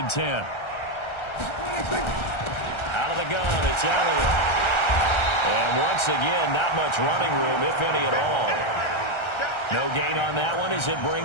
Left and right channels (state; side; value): late; right; 1.3 ms